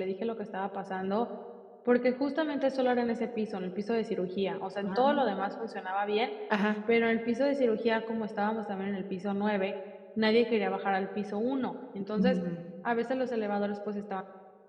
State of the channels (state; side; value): identical; both; correlation 1.00